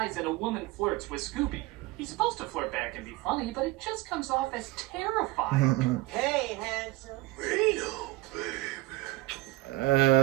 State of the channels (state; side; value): quieter; left; 19.1 dB